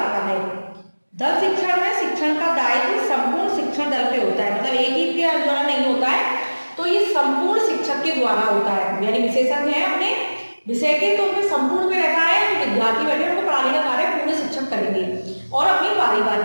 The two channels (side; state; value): both; inverted; correlation -1.00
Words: है। दल शिक्षण में शिक्षण का दायित्व संपूर्ण शिक्षण दल पे होता है, मतलब एक ही के द्वारा नहीं होता है, तो ये संपूर्ण शिक्षक के द्वारा होता है। यानी विशेषज्ञ है अपने विषय के, तो उनमें संपूर्ण में रहता है, विद्यार्थी बैठे उनको पढ़ाने का कार्य पूरे शिक्षक करेंगे और अपनी